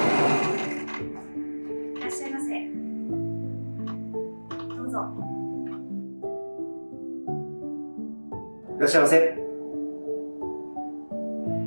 らっしゃいませ。どうぞ。いらっしゃいませ。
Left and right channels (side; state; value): both; inverted; correlation -1.00